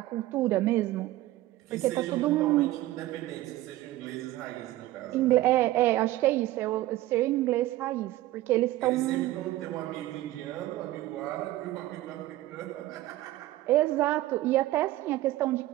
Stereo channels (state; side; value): quieter; left; 16.2 dB